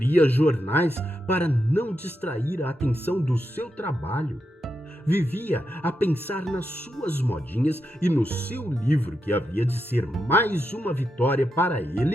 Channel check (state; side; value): normal; both; correlation 0.85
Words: jornais para não distrair a atenção do seu trabalho. Vivia a pensar nas suas modinhas e no seu livro que havia de ser mais uma vitória para